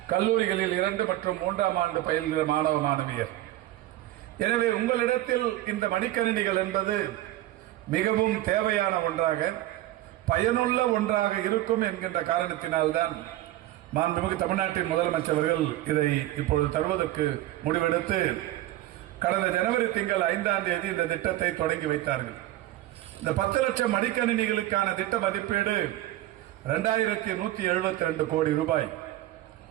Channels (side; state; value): left; quieter; 15.4 dB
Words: கல்லூரிகளில் 2 மற்றும் 3ஆம் ஆண்டு பயில்கிற மாணவ மாணவியர். எனவே உங்களிடத்தில் இந்த மடிக்கணினிகள் என்பது மிகவும் தேவையான ஒன்றாக, பயனுள்ள ஒன்றாக இருக்கும் என்கின்ற காரணத்தினால்தான் மாண்புமிகு தமிழ்நாட்டின் முதலமைச்சர்கள் இதை இப்பொழுது தருவதற்கு முடிவெடுத்து கடந்த ஜனவரி திங்கள் 5ஆம் தேதி இந்த திட்டத்தை தொடங்கி வைத்தார்கள். இந்த 10 லட்சம் மடிக்கணினிகளுக்கான திட்ட மதிப்பீடு 2172 கோடி ரூபாய்.